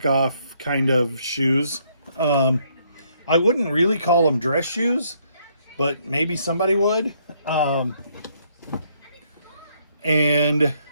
kind of shoes. I wouldn't really call them dress shoes, but maybe somebody would. They're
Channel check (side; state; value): both; inverted; correlation -0.71